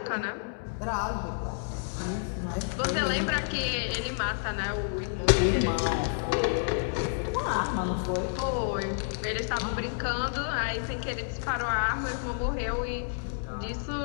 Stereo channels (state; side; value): silent; right; 58 dB below the other